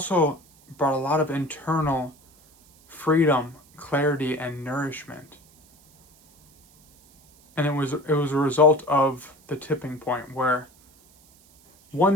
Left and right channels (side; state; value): right; noise; hiss, 29 dB below the sound